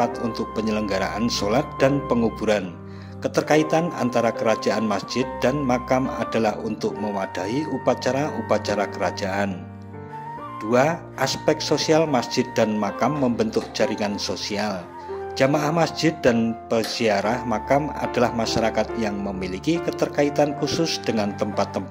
untuk penyelenggaraan sholat dan penguburan. Keterkaitan antara kerajaan masjid dan makam adalah untuk mewadahi upacara-upacara kerajaan. 2. Aspek sosial masjid dan makam membentuk jaringan sosial. Jamaah masjid dan peziarah makam adalah masyarakat yang memiliki keterkaitan khusus dengan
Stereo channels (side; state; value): both; identical; correlation 1.00